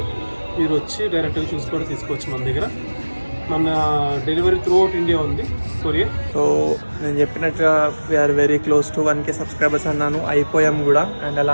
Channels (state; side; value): inverted; both; correlation -1.00